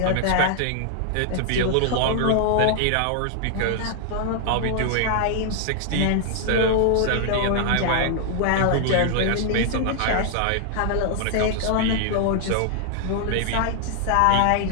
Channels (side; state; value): both; different; correlation -0.01